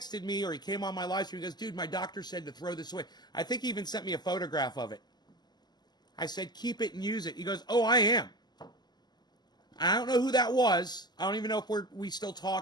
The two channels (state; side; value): late; right; 0.21 ms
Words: me, or he came on my live stream, he goes, dude, my doctor said to throw this away. I think he even sent me a photograph of it. I said, keep it and use it. He goes, oh, I am. I don't know who that was. I don't even know if we still